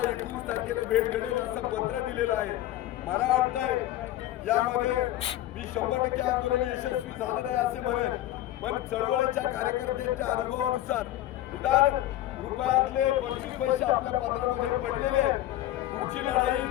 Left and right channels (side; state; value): right; quieter; 14.4 dB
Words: 19 तारखेला भेट घडेल असं पत्र दिलेलं आहे. मला वाटतंय यामध्ये मी 100% आंदोलन यशस्वी झालं नाही असे म्हणेन पण चळवळीच्या कार्यकर्त्यांच्या अनुभवानुसार निदान रुपयातले 25 पैसे आपल्या पत्रामध्ये पडलेले आहेत. पुढची लढाई